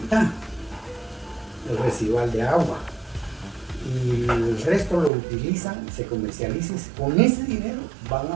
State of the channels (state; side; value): drops out; left; at 5.1 s